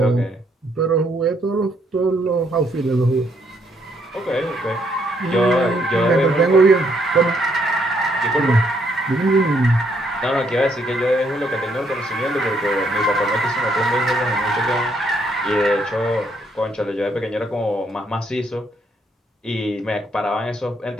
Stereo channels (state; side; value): normal; both; correlation 0.71